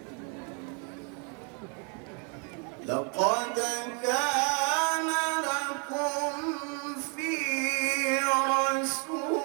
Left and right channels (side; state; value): left; quieter; 37.2 dB